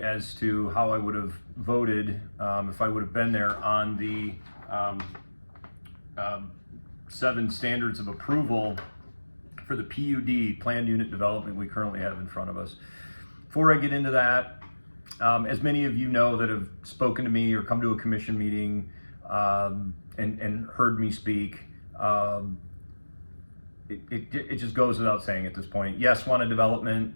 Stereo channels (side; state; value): both; inverted; correlation -1.00